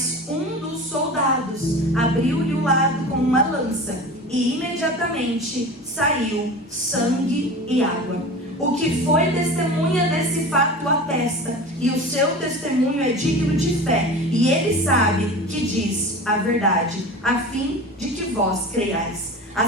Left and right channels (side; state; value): both; normal; correlation 0.34